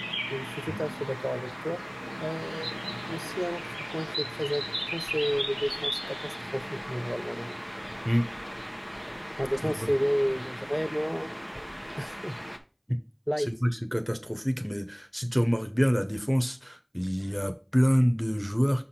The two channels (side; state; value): both; identical; correlation 1.00